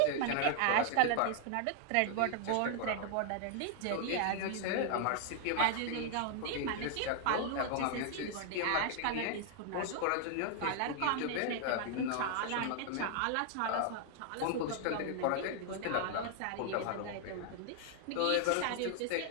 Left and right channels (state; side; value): different; both; correlation 0.00